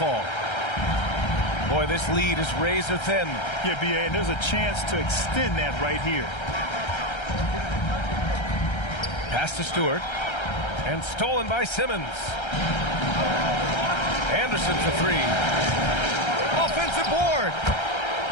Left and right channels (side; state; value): right; late; 1.3 ms